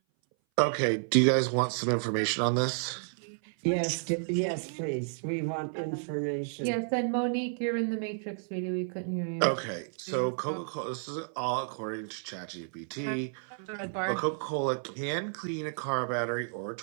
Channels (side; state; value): left; silent; 57 dB below the other